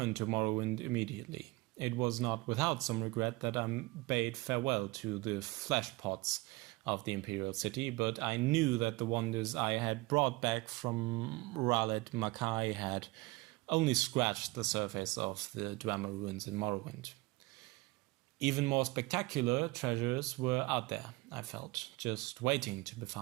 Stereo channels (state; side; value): quieter; left; 22.6 dB